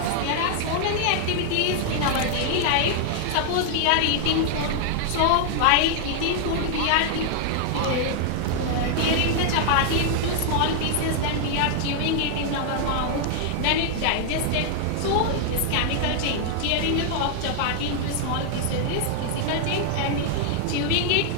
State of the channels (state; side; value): different; both; correlation 0.00